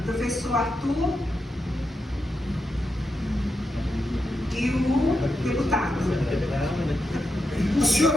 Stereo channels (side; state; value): both; normal; correlation 0.86